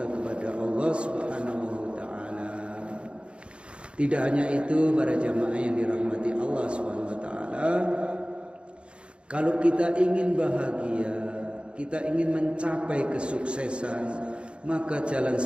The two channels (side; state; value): left; late; 0.057 ms